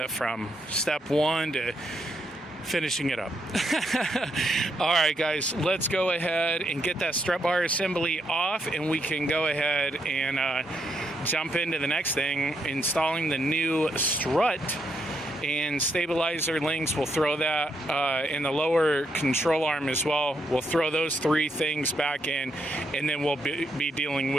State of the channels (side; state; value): both; normal; correlation 0.78